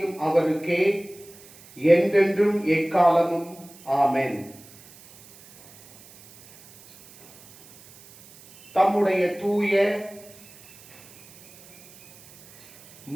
அவருக்கே, என்றென்றும் எக்காலமும். ஆமென். தம்முடைய தூய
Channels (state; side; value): noise; right; hiss, 23 dB below the sound